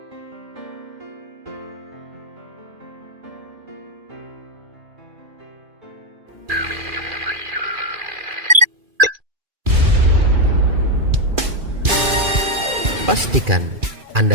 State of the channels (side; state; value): left; late; 2.4 ms